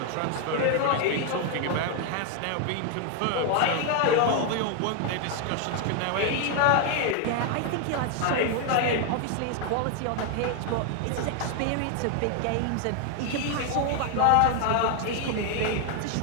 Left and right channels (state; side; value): different; both; correlation 0.01